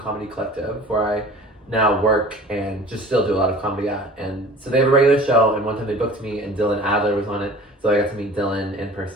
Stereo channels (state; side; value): normal; both; correlation 0.44